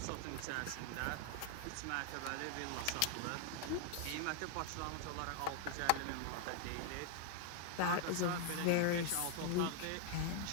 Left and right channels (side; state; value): both; different; correlation 0.00